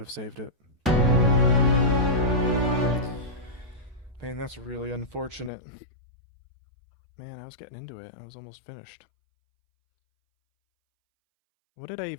have saved it. Man, that's really unfortunate. Man, I was getting into it. I was almost finished. What did I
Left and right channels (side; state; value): right; drops out; at 5.5 s